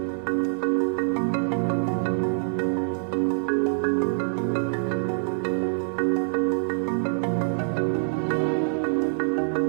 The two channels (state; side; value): silent; left; digital silence